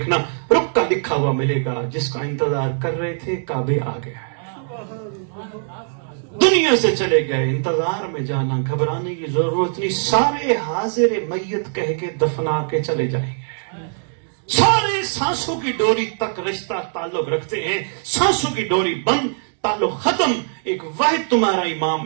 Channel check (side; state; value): left; silent; digital silence